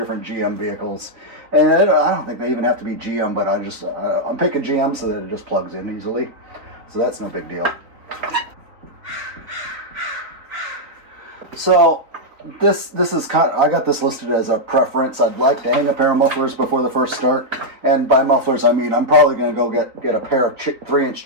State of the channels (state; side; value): late; left; 3.9 ms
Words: GM vehicles. And I don't think they even have to be GM, but I'm picking GM so that it just plugs in easily. So that's no big deal. So this is I got this listed as a preference. I'd like to hang a pair of mufflers before the first start. And by mufflers, I mean I'm probably going to go get a pair of 3-inch